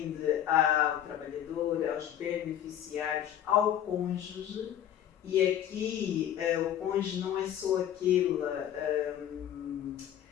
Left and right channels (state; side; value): quieter; right; 10.7 dB